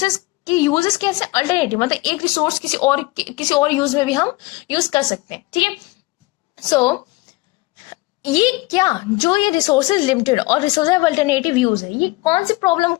की यूजेस कैसे, अल्टरनेटिव, मतलब एक रिसोर्स किसी और यूज में भी हम यूज कर सकते हैं. ठीक है, सो ये क्या, जो ये रिसोर्सेज लिमिटेड और रिसोर्सेज हैव अल्टरनेटिव यूज है, ये कौन सी प्रॉब्लम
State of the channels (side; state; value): right; quieter; 22.4 dB